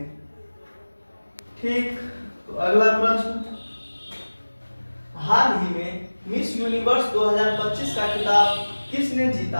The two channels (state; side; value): inverted; both; correlation -1.00